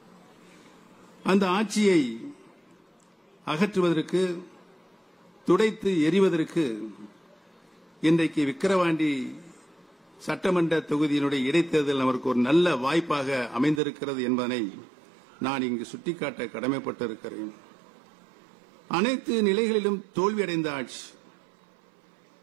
அந்த ஆட்சியை அகற்றுவதற்கு, துடைத்து எறிவதற்கு இன்றைக்கு விக்கிரவாண்டி சட்டமன்ற தொகுதியினுடைய இடைத்தேர்தல் நமக்கு ஒரு நல்ல வாய்ப்பாக அமைந்திருக்கிறது என்பதனை நான் இங்கு சுட்டிக்காட்ட கடமைப்பட்டிருக்கிறேன். அனைத்து நிலைகளிலும் தோல்வியடைந்த ஆட்சி.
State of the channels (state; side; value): drops out; left; at 13.8 s